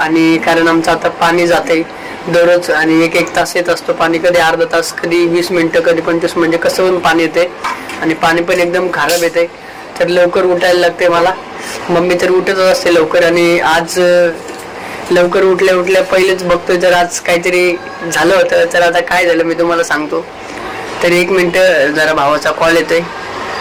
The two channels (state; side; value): identical; both; correlation 1.00